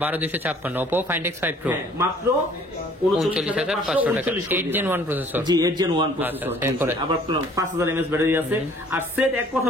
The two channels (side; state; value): both; normal; correlation 0.56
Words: 12,256, Oppo Find X5 Pro মাত্র 39,500 টাকা, 8 Gen 1 প্রসেসর। জি 8 Gen 1 প্রসেসর, আবার 5000 mAh ব্যাটারি আছে, আর সেট এক কথা